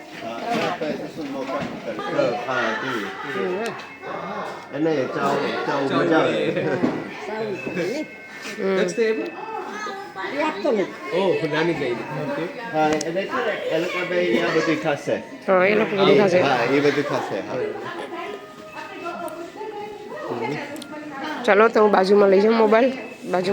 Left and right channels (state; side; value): identical; both; correlation 1.00